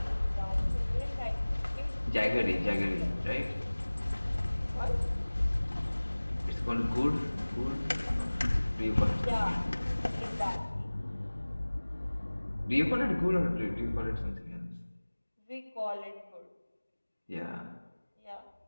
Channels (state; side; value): inverted; both; correlation -1.00